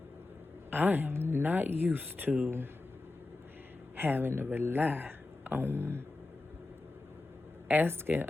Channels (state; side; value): quieter; right; 3.0 dB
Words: I am not used to having to rely on asking